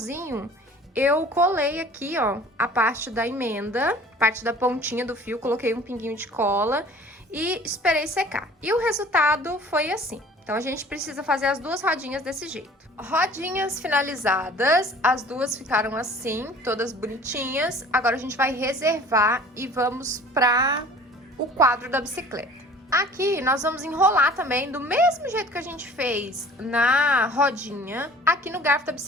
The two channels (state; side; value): normal; both; correlation 0.47